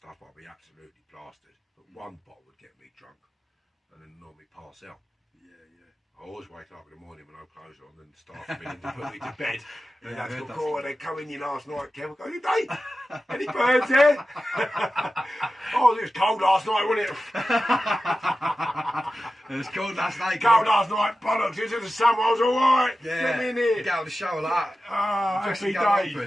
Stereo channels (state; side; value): normal; both; correlation 0.94